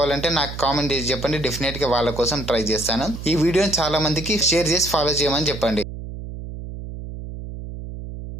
నాకు కామెంట్ చేసి చెప్పండి. డెఫినెట్ గా వాళ్ళ కోసం ట్రై చేస్తాను. ఈ వీడియోని చాలా మందికి షేర్ చేసి ఫాలో చేయమని చెప్పండి.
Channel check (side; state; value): right; noise; hum, 10 dB below the sound